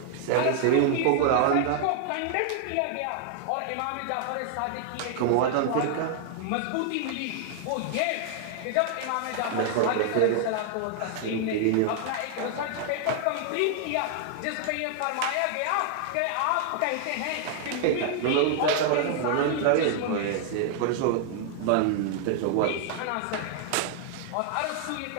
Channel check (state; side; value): different; both; correlation 0.00